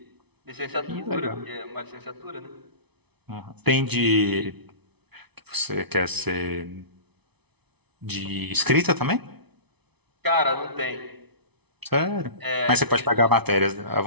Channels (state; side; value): late; left; 0.99 ms